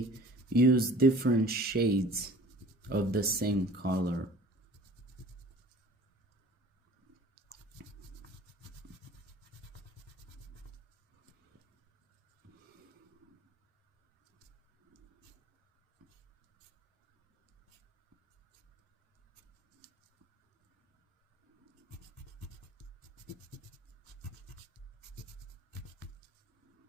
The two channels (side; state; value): both; normal; correlation 0.47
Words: use different shades of the same color.